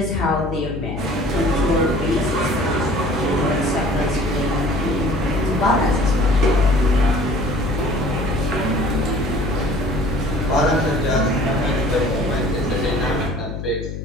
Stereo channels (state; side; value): noise; left; hum, 7 dB below the sound